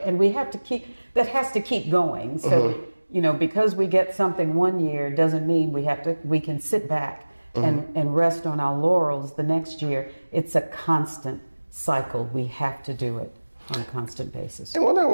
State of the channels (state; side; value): inverted; both; correlation -1.00